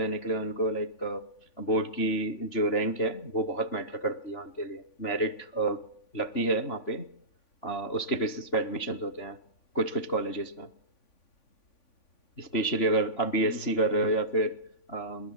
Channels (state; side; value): late; right; 3.5 ms